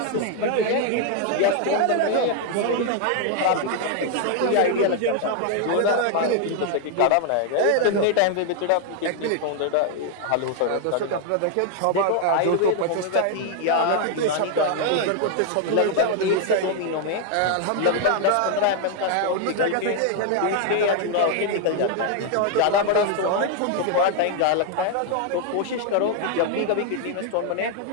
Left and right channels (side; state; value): both; different; correlation 0.00